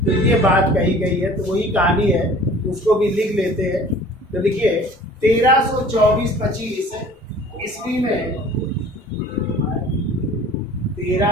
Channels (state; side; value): normal; both; correlation 0.47